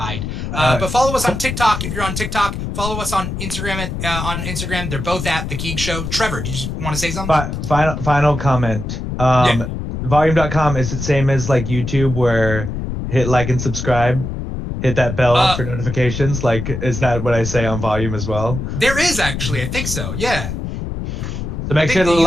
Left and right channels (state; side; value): noise; left; rumble, 5 dB below the sound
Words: But follow us on TikTok. If you're on TikTok, follow us on Instagram. On Instagram, they're both at The Keeg Show. Trevor, do you want to say something? Final comment. Yeah. Volume.com, is it same as like YouTube where hit like and subscribe? Hit that bell for notifications? Like, is that what I say on Volume as well? There is actually. I think so. Yeah. So make sure to